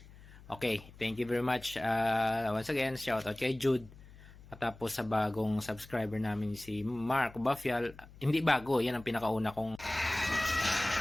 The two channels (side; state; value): left; noise; hum, 20 dB below the sound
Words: Okay, thank you very much. Once again, shout out kay Jude. At tapos sa bagong subscriber namin si Mark Bafial. Hindi bago, yan ang pinakauna kong ito